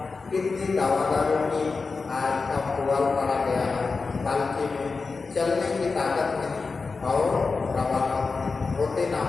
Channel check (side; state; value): right; quieter; 4.3 dB